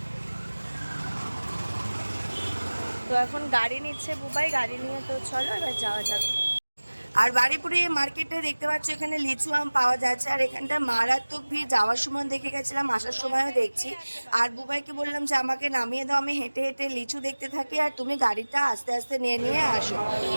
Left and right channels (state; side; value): inverted; both; correlation -1.00